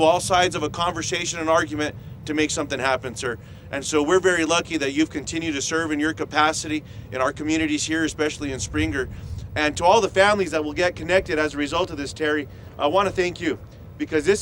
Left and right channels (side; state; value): both; identical; correlation 1.00